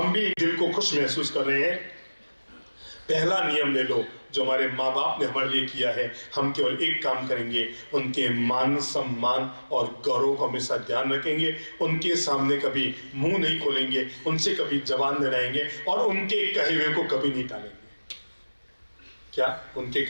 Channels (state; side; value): inverted; both; correlation -1.00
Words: भी दिल को खुश महसूस कर रहे हैं, पहला नियम ले लो जो हमारे माँ बाप ने हमारे लिए किया है, हम केवल एक काम करेंगे, उनके मान सम्मान और गौरव को हमेशा ध्यान रखेंगे, उनके सामने कभी मुंह नहीं खोलेंगे, उनसे कभी जबान नहीं लड़ाएंगे और उनके कहे हुए को कभी नहीं टालेंगे। क्या उनके